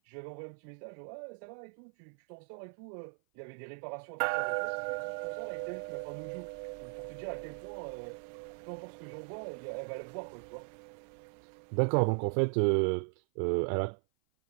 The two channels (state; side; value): silent; left; 53 dB below the other